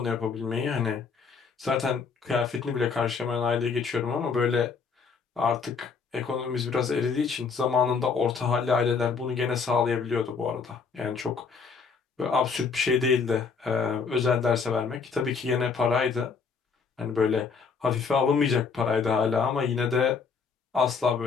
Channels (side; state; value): right; quieter; 5.4 dB